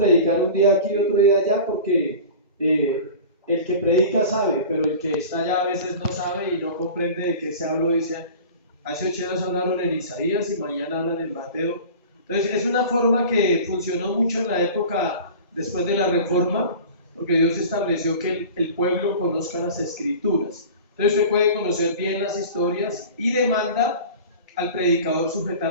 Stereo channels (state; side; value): inverted; both; correlation -0.37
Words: un día aquí y otro día allá porque el que predica sabe, pero el que está allá a veces no sabe y no comprende de qué se habló. Dice, hace 8 días hablaron en Isaías y mañana hablan en Mateo. Entonces es una forma que funcionó mucho en la época después de la Reforma, porque Dios estableció que el pueblo conozca las escrituras. Entonces usted puede conocer bien las historias y demanda al predicador